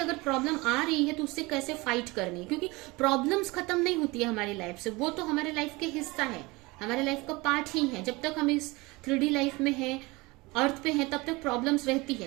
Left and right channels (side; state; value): left; quieter; 23.5 dB